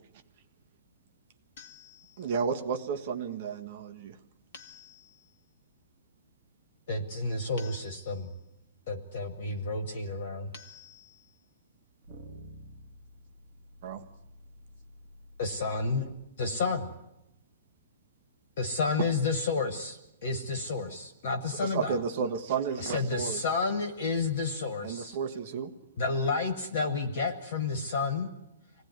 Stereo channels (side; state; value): both; inverted; correlation -0.44